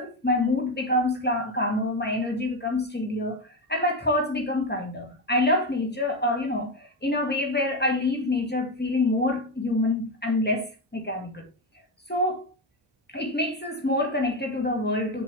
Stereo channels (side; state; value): both; normal; correlation 0.12